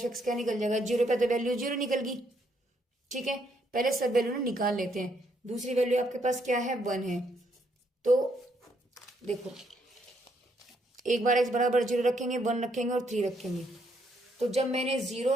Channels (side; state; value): both; normal; correlation 0.73